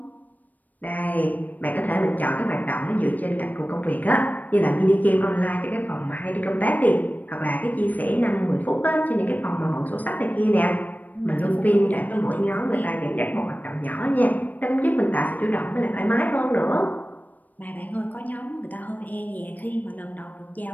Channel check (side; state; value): right; late; 0.082 ms